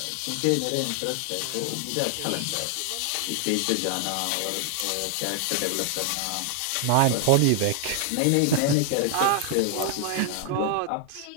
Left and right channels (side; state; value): both; different; correlation 0.00